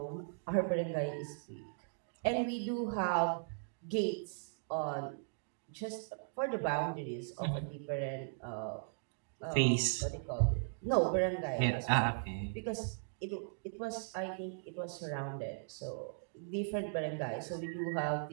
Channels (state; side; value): silent; left; digital silence